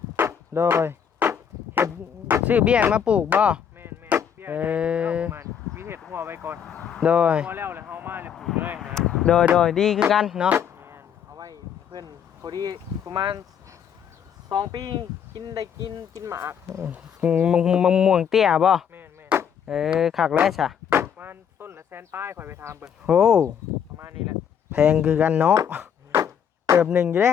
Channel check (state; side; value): quieter; right; 8.1 dB